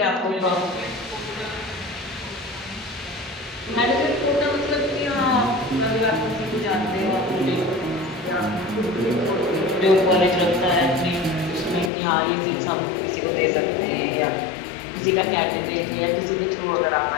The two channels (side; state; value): right; drops out; at 11.9 s